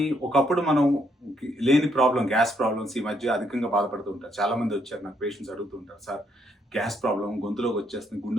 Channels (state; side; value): normal; both; correlation 0.73